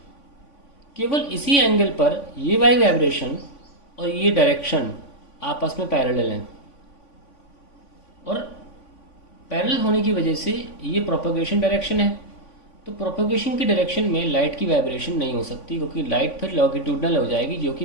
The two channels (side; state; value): right; late; 3.5 ms